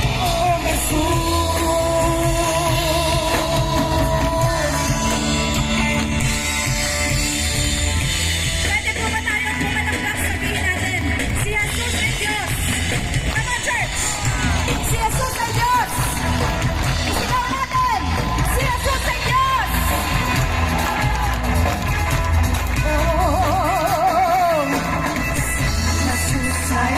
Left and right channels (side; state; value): both; identical; correlation 1.00